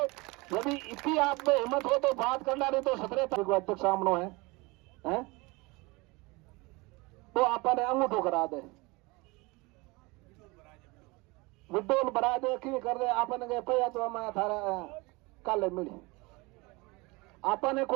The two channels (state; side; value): quieter; left; 24.9 dB